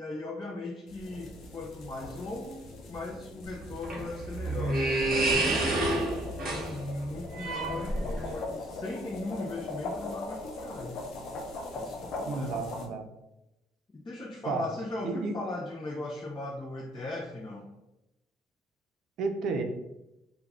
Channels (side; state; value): both; normal; correlation 0.63